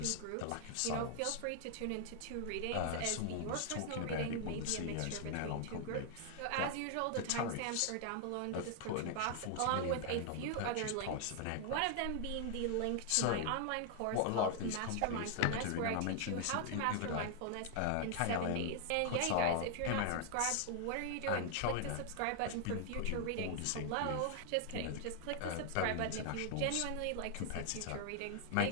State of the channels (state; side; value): different; both; correlation 0.00